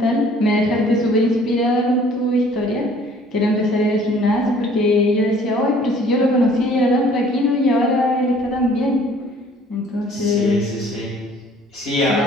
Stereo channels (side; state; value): both; normal; correlation 0.55